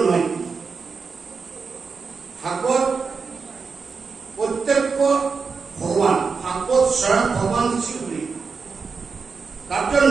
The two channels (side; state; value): left; quieter; 5.1 dB